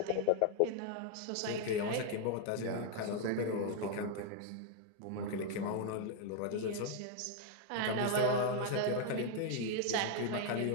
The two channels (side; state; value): both; different; correlation 0.00